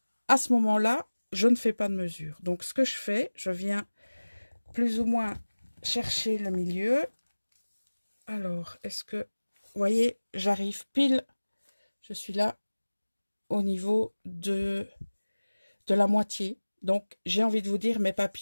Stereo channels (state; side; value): inverted; both; correlation -1.00